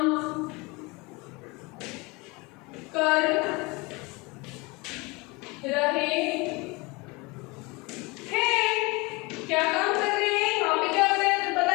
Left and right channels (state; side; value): quieter; right; 25.7 dB